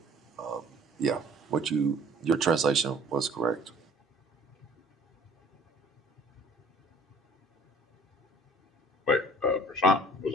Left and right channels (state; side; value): normal; both; correlation 0.52